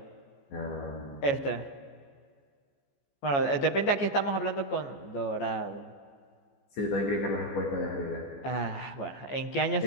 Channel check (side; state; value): right; late; 14 ms